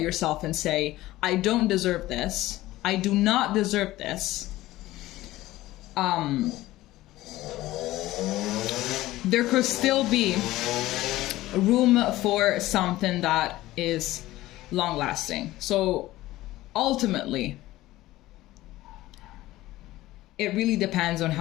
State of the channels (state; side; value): quieter; right; 16.7 dB